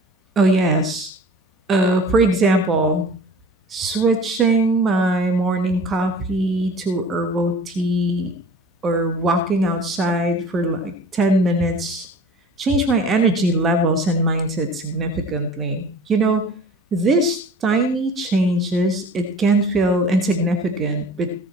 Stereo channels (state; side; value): normal; both; correlation 0.43